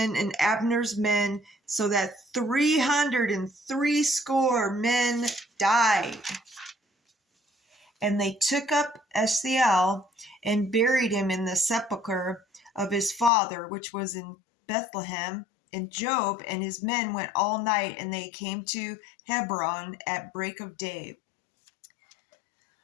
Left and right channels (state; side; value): drops out; right; at 13.3 s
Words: and Abner's men, so that 360 men died. And they took up Asahel and buried him in the sepulchre of his father, which was in Bethlehem. And Job and his men went all night, and they came to Hebron at break of day.